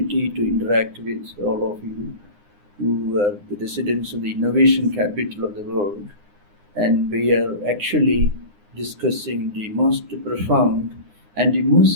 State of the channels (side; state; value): left; late; 9.8 ms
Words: to interact with all of you who are the residents of the innovation capital of the world. And we are actually discussing the most profound and the